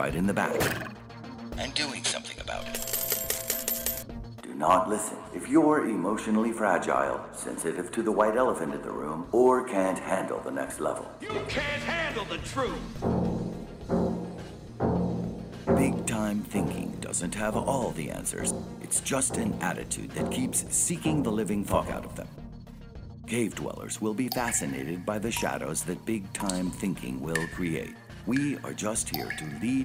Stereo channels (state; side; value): identical; both; correlation 1.00